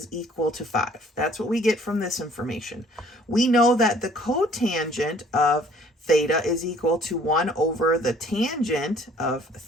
equal to 5. That's what we get from this information. We know that the cotangent of theta is equal to 1 over the tangent of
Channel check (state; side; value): normal; both; correlation 0.57